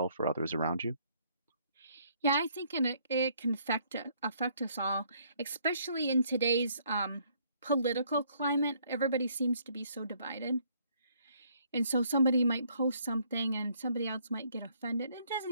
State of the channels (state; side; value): inverted; both; correlation -0.65